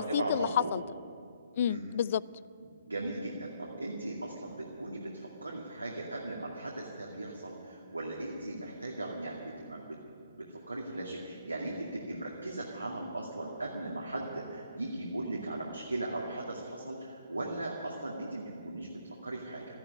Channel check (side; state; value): both; inverted; correlation -0.72